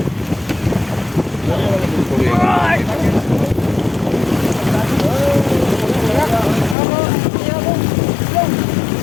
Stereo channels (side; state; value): right; drops out; at 6.8 s